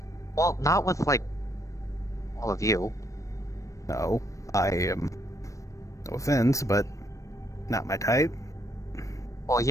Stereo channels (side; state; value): right; late; 0.16 ms